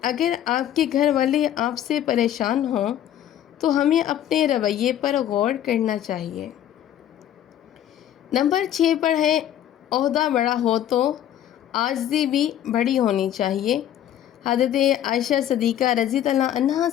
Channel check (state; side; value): quieter; right; 11.1 dB